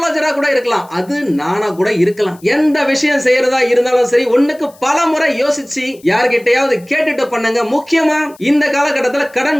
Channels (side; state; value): left; noise; hiss, 27 dB below the sound